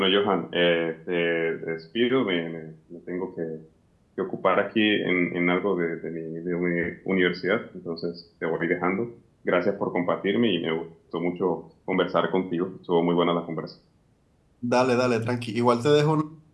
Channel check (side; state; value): both; identical; correlation 1.00